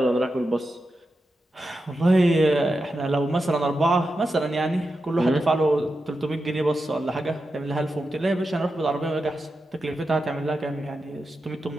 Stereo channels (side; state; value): both; normal; correlation 0.89